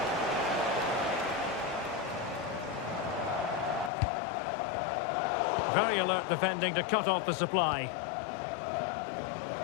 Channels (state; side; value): drops out; right; at 3.9 s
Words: Very alert defending to cut off the supply.